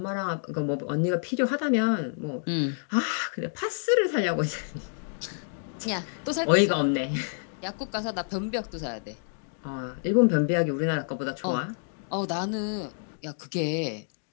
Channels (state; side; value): silent; right; digital silence